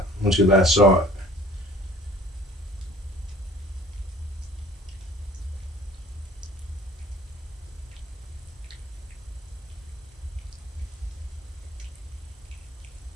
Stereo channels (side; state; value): both; normal; correlation 0.51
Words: When she last saw it.